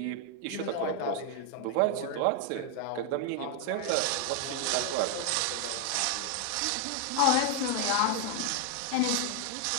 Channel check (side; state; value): both; different; correlation 0.01